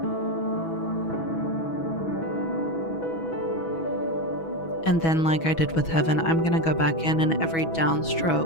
And then, like I did with heaven, I'm going to go back in, and every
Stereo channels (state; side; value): late; right; 6.1 ms